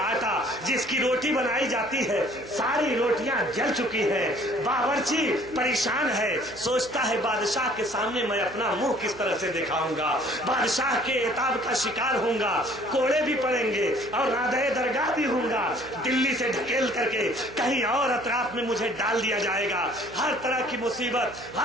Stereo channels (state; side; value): noise; right; hum, 19 dB below the sound